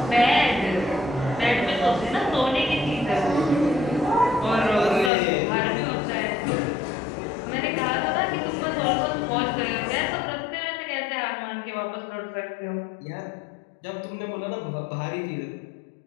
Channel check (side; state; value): right; drops out; at 5.1 s